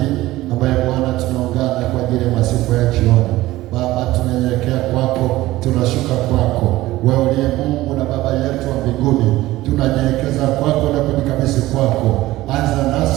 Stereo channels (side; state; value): left; quieter; 17.1 dB